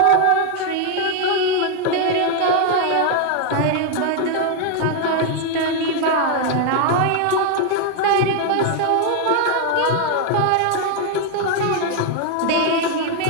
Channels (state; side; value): different; both; correlation 0.00